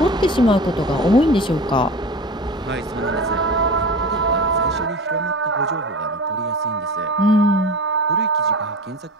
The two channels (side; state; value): both; normal; correlation 0.33